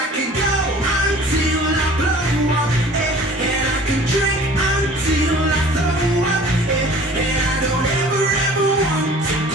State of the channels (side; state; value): both; normal; correlation 0.47